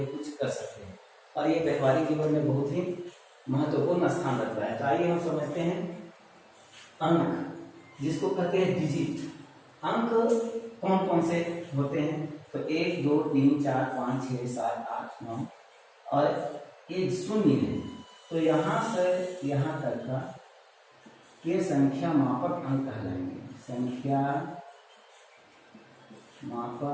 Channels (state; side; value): identical; both; correlation 1.00